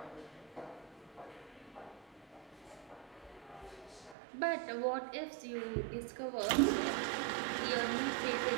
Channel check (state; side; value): drops out; left; at 4.2 s